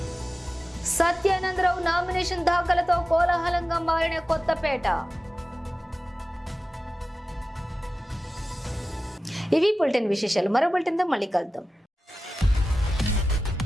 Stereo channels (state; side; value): normal; both; correlation 0.95